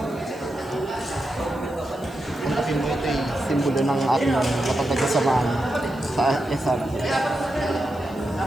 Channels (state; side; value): noise; right; hiss, 26 dB below the sound